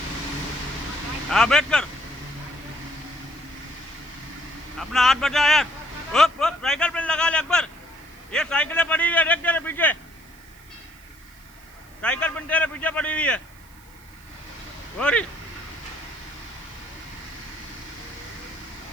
हाँ बैठ कर अपना हाथ बचा यार उप उप साइकिल पे लगा ले अकबर ये साइकिलें पड़ी हुई है देख तेरे पीछे साइकिल पिन तेरे पीछे पड़ी हुई है और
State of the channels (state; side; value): noise; right; hiss, 26 dB below the sound